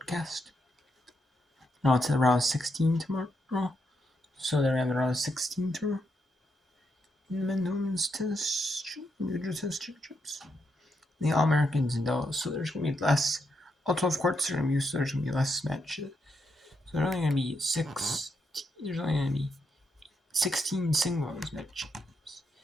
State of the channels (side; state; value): both; normal; correlation 0.80